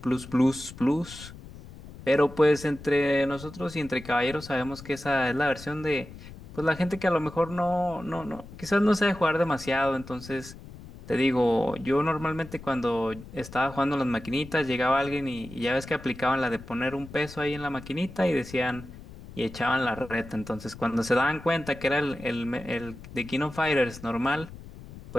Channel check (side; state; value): left; noise; rumble, 16 dB below the sound